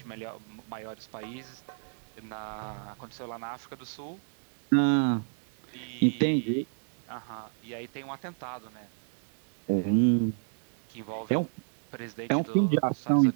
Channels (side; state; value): left; silent; digital silence